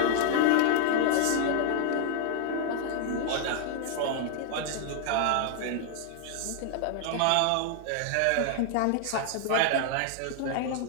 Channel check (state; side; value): different; both; correlation 0.00